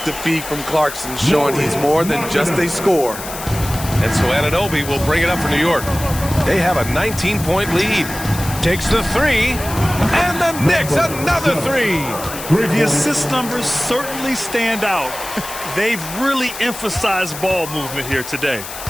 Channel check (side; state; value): left; noise; hiss, 10 dB below the sound